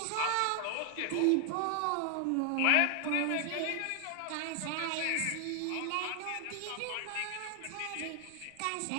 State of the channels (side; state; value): both; different; correlation 0.00